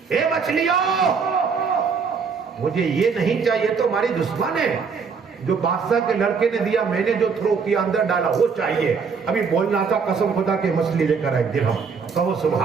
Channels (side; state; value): left; quieter; 5.6 dB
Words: اے مچھلیوں مجھے یہ نہیں چاہیے تو ہماری دشمن ہے. جو بادشاہ کے لڑکے نے دیا میں نے جو تھرو کیا اندر ڈالا وہ چاہیے. ابھی بولنا تھا قسم خدا کے مچھلی لے کر آئے درہم. کہو